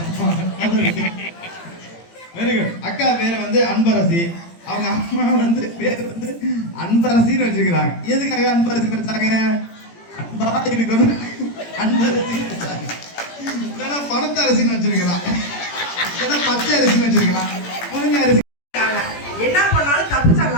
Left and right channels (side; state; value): right; late; 17 ms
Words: Very good. அக்கா பேர் வந்து அன்பரசி, அவங்க அம்மா வந்து பேர் வந்து அன்பரசின்னு வச்சிருக்கிறாங்க. எதுக்காக அன்பரசி வச்சாங்க? அன்பா இருக்கணும் அன்பரசி வச்சாங்க. இல்லைன்னா பணத்த அரிசின்னு வச்சிருக்கிறான், இல்லைன்னா பச்சை அரிசின்னு வச்சிருக்கிறான், முருங்கை அரிசி. என்ன பண்ணாலும் தப்பு